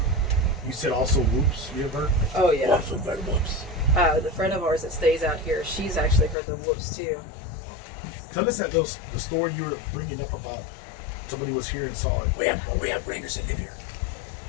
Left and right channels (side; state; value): right; drops out; at 6.4 s